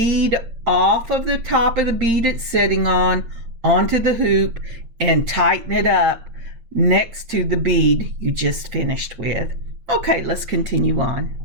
off of the top of the bead it's sitting on onto the hoop and tighten it up next to the bead you just finished with. Okay, let's continue on.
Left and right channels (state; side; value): late; left; 8.8 ms